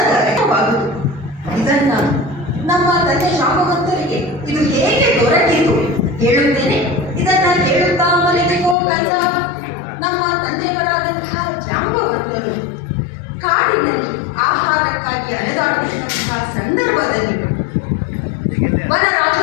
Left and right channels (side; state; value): right; drops out; at 8.8 s